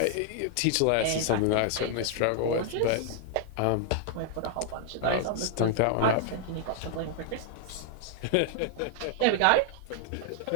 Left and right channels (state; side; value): different; both; correlation -0.01